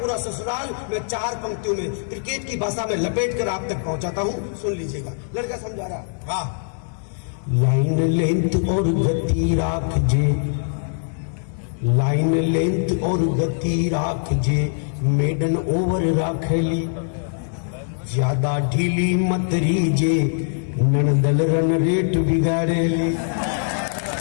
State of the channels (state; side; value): silent; right; 64 dB below the other